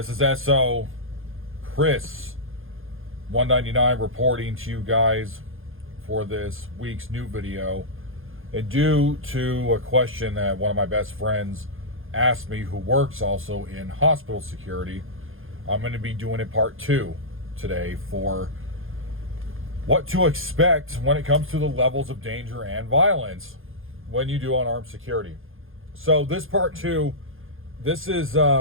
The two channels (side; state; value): left; late; 0.60 ms